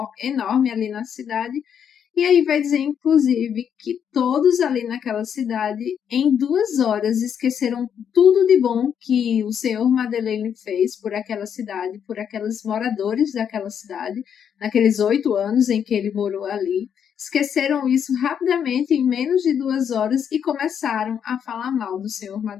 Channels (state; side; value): quieter; right; 8.2 dB